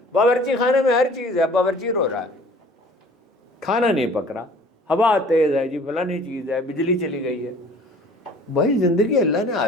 باورچی خانے میں ہر چیز ہے، باورچی رو رہا ہے، کھانا نہیں پک رہا، ہوا تیز ہے جی، فلانی چیز ہے، بجلی چلی گئی ہے۔ بھائی زندگی اللہ نے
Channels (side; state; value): both; normal; correlation 0.50